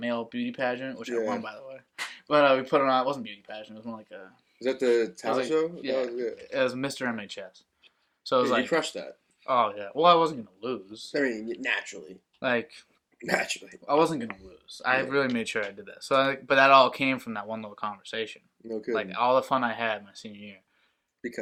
beauty pageant, which I won by the way. But we put it on. It wasn't beauty pageant. It was more like a. Is that the talent show? Yeah, it was Mr. MHS. So it was you crushed that. Oh yeah. Well, I wasn't gonna lose. I mean, naturally. Naturally. I wasn't gonna lose. I really made sure I did that. So, but that all came from that one little conversation. No kidding. All the fun I had my senior year.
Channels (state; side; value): identical; both; correlation 1.00